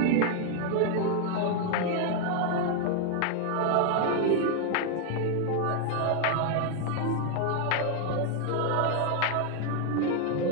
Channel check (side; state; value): both; different; correlation 0.00